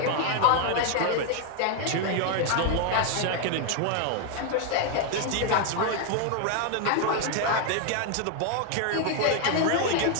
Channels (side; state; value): both; different; correlation 0.00